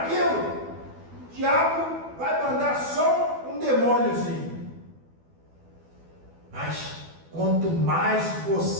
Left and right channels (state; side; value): late; left; 12 ms